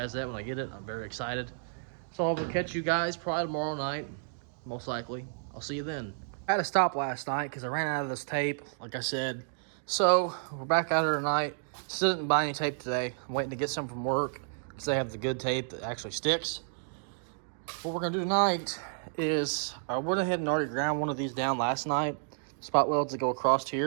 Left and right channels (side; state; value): left; silent; digital silence